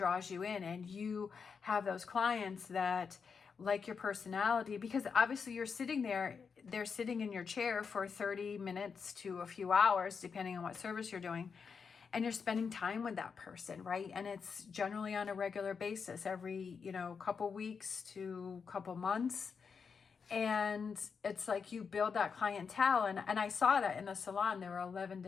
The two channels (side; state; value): right; quieter; 5.8 dB